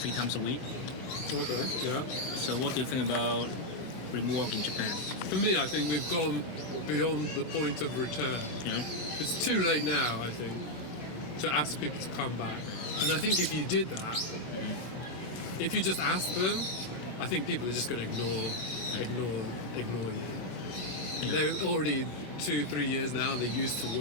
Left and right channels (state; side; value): late; right; 16 ms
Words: times a week. Okay, yeah. So what do you think about remote work in Japan? For me, I think we've gone beyond the point of return. Yeah. It's too late now, I think, to ask people to come back. And I think if you did that, if you just asked them, I think people are just going to ignore you. Yeah. They're already 2-3 years now. They're used to